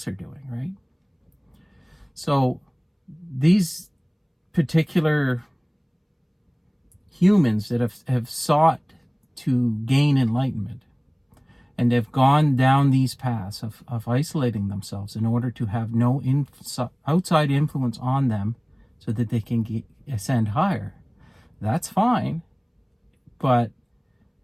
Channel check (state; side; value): identical; both; correlation 1.00